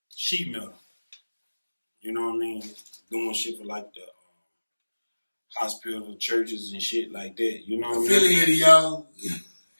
sheet metal. You know what I mean? Doing shit for like the hospital, churches, and shit like that. You know what I mean? Affiliated, y'all.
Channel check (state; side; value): inverted; both; correlation -1.00